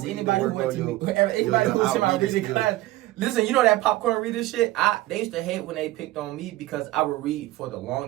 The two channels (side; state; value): left; quieter; 17.3 dB